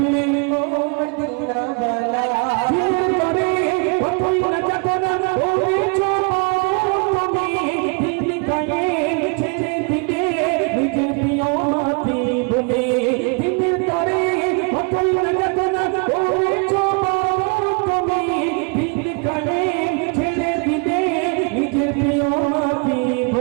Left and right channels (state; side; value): quieter; left; 34.5 dB